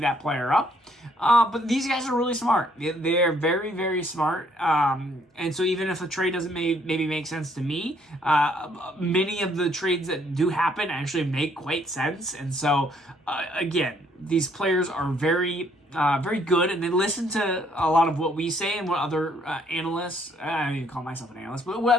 that player up. But these guys are really smart. They're very, very smart. And so even if a trade doesn't maybe make sense to me, many of the trades that do happen actually make quite sense. And so, again, these players are very, very good, and they listen to a lot of what we say and what other analysts, I don't even call myself an analyst, but what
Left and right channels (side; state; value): both; normal; correlation 0.66